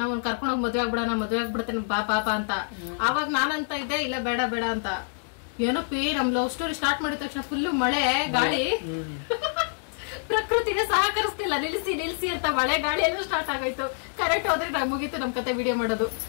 ನಾವು ಕರ್ಕೊಂಡೋಗಿ ಮದ್ವೆ ಆಗ್ಬಿಡ್ತೇನೆ ಪಾಪ ಅಂತ. ಆವಾಗ ನಾನಂತ ಇದ್ದೆ, ಇಲ್ಲ ಬೇಡ ಬೇಡ ಅಂತ. ಏನಪ್ಪಿ, ನಮ್ ಲವ್ ಸ್ಟೋರಿ ಸ್ಟಾರ್ಟ್ ಮಾಡಿದ ತಕ್ಷಣ ಫುಲ್ ಮಳೆ ಗಾಳಿ, ಪ್ರಕೃತಿಗೆ ಸಹಕರಿಸ್ತಿಲ್ಲ. ನಿಲ್ಸಿ ಅಂತ ಮಳೆ ಗಾಳಿ ಎಲ್ಲ ಸ್ಟಾರ್ಟ್ ಆಗೋಯ್ತು. ಕರೆಕ್ಟ್ ಹೋದ್ರೆ ಮುಗೀತು ನಮ್ ಕತೆ ವಿಡಿಯೋ ಮಾಡೋದು.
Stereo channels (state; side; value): silent; right; digital silence